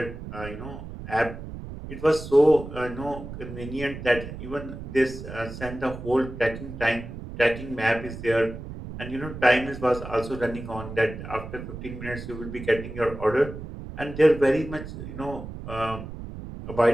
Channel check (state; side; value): noise; right; rumble, 10 dB below the sound